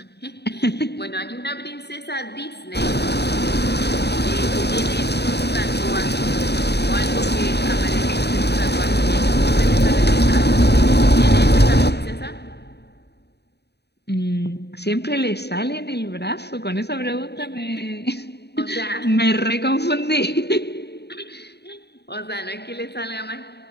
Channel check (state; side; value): late; right; 0.48 ms